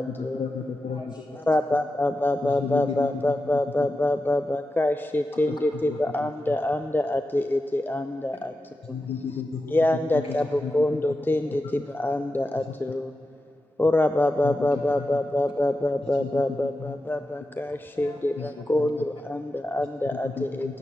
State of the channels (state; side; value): normal; both; correlation 0.90